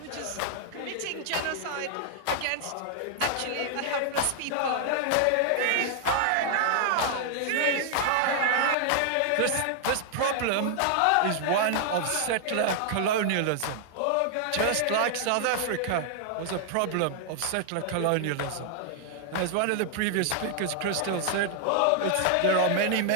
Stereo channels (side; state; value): both; different; correlation 0.00